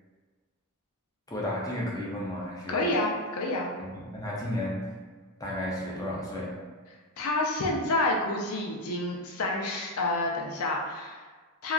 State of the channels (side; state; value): both; normal; correlation 0.08